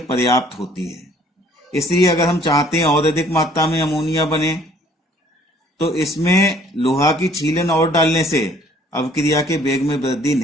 पर्याप्त होती है। इसलिए अगर हम चाहते हैं और अधिक मात्रा में अमोनिया बने, तो इसमें लोहा की छीलन और डालने से अवक्रिया के वेग में वृद्धि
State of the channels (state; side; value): normal; both; correlation 0.58